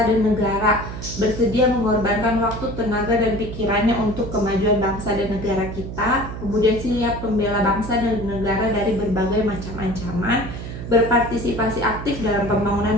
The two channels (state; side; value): noise; right; hum, 9 dB below the sound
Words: dan negara, bersedia mengorbankan waktu, tenaga, dan pikirannya untuk kemajuan bangsa dan negara kita. Kemudian siap membela bangsa dan negara dari berbagai macam ancaman, berpartisipasi aktif dalam